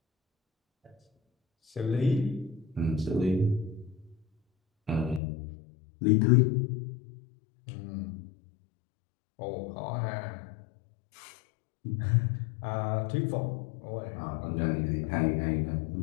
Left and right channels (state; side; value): drops out; right; at 5.2 s